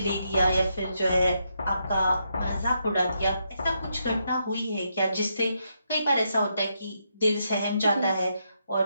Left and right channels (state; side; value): inverted; both; correlation -0.80